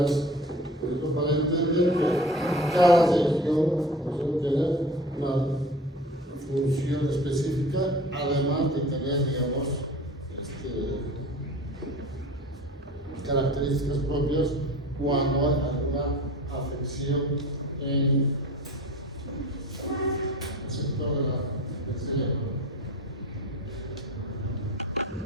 por ejemplo, para entender que cada región tiene una función específica, además de tener, digamos, características propias cuando hay alguna afección en el sector del cerebro.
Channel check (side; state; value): both; normal; correlation 0.40